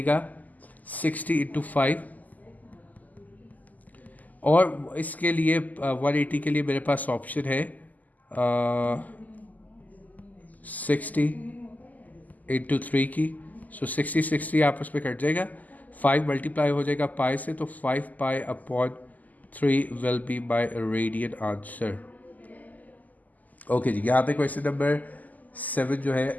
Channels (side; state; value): right; late; 0.080 ms